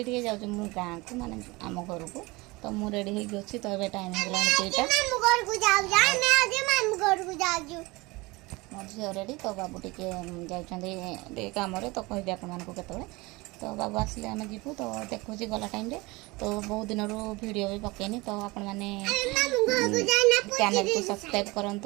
टे जाऊँ मु गाँ को माने आम घर को तो मु रेडी हो अच्छी तो ये टाइम हो मो झील रेडी तो बाबू टे जाते कम तो कहि आपको तो बाबू आसले आम जीवु तो देखुची गला टाइम रे तो बहुत दिन रू वीडियो भी पकेनी तो आपण मैंने चैनल को सब्सक्राइब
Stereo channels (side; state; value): left; quieter; 23.3 dB